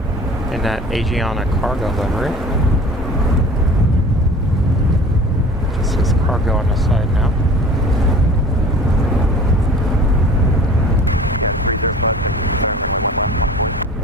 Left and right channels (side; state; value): both; normal; correlation 0.42